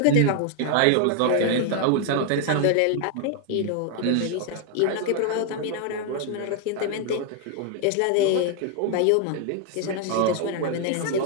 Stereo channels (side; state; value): both; different; correlation 0.00